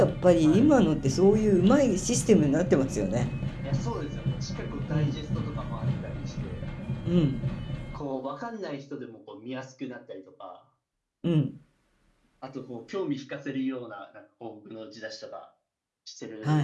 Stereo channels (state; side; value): identical; both; correlation 1.00